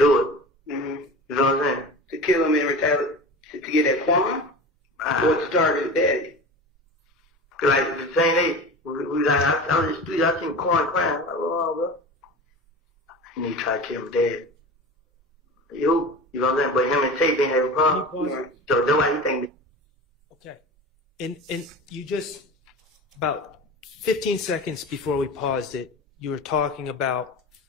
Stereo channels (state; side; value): normal; both; correlation 0.32